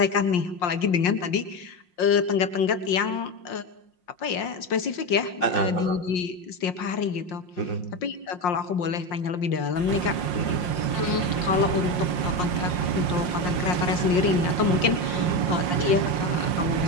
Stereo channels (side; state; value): right; late; 5.6 ms